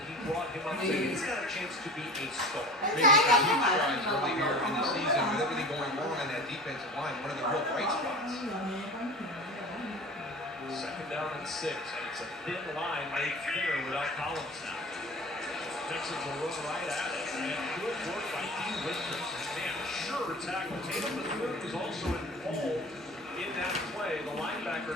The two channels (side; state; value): both; normal; correlation 0.38